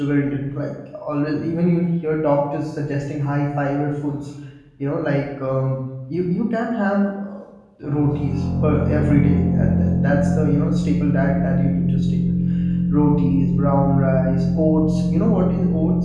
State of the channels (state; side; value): identical; both; correlation 1.00